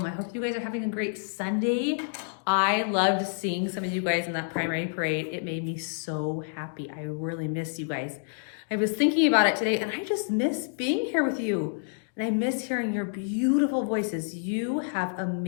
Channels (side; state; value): right; silent; digital silence